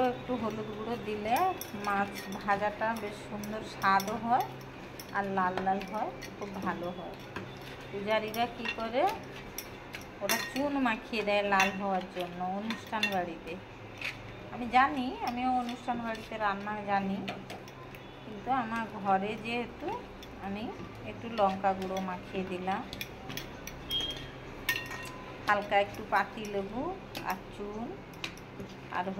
একটু হলুদ গুঁড়ো দিলে মাছ ভাজাটা বেশ সুন্দর স্বাদও হয় আর লাল লাল হয়, খুব ভালো হয়। পূজারীরা কী করে, ওরা চুন মাখিয়ে দেয় লাল হওয়ার জন্য অনুষ্ঠান বাড়িতে। আমি জানি, আমিও অনুষ্ঠান বাড়িতে রান্না জানি, কিন্তু আমার ঘরে যেহেতু আমি একটু লঙ্কা গুঁড়ো মাখিয়ে দিলাম, হালকা একটু পাতিলেবু আর চুন আর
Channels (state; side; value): identical; both; correlation 1.00